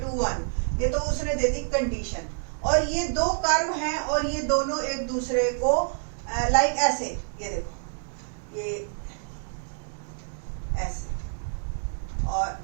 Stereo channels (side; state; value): left; silent; digital silence